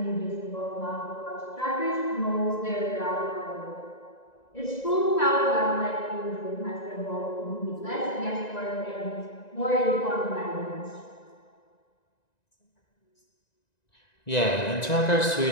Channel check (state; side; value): late; right; 1.9 ms